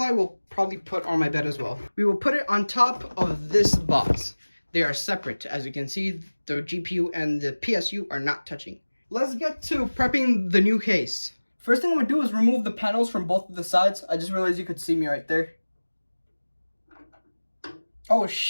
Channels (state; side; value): inverted; both; correlation -1.00